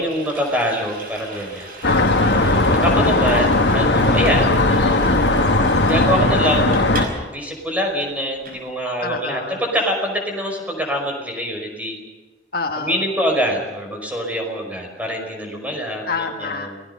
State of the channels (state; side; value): normal; both; correlation 0.23